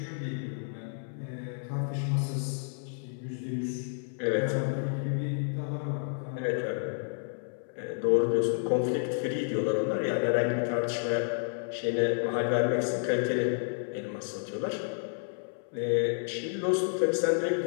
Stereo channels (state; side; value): silent; right; 57 dB below the other